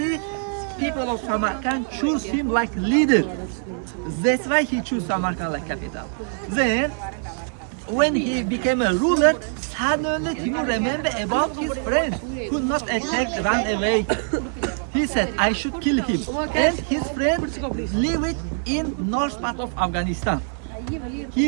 people of Samarkand choose him like leader. That's why he chose Samarkand like capital. Then, when he became a ruler, suddenly Timur remembered about his friend who not attacked, ran away. He said, I should kill him. And his friend lived in north part of Afghanistan.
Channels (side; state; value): left; silent; 63 dB below the other